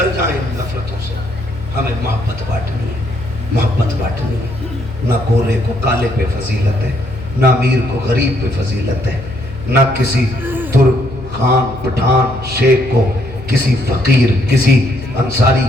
جائیں نفرتوں سے. ہمیں محبت بانٹنی ہے، محبت بانٹنی ہے. نہ گورے کو کالے پہ فضیلت ہے، نہ امیر کو غریب پہ فضیلت ہے، نہ کسی ترک خان پٹھان شیخ کو کسی فقیر کسی انصاری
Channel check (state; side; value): noise; left; hum, 14 dB below the sound